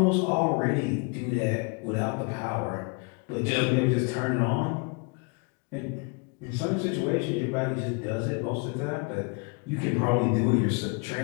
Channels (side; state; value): right; quieter; 32.6 dB